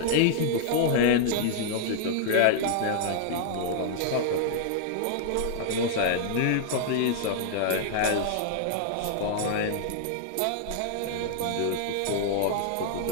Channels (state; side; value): different; both; correlation -0.01